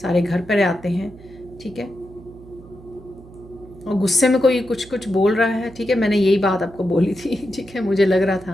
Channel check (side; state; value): right; noise; hum, 20 dB below the sound